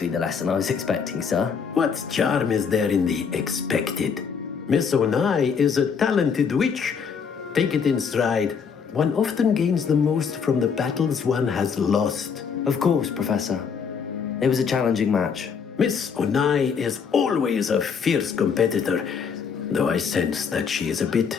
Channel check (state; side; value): quieter; right; 6.3 dB